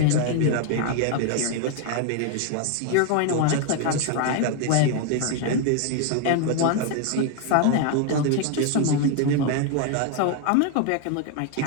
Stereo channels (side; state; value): both; different; correlation 0.01